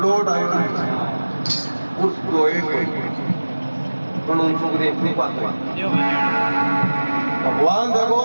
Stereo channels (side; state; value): both; inverted; correlation -1.00